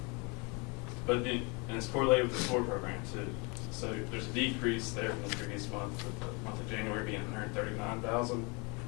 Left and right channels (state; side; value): quieter; right; 30.5 dB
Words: But and it's correlated with the SOAR program too. So there's a decrease there from the previous month, with the month of January being $139,000.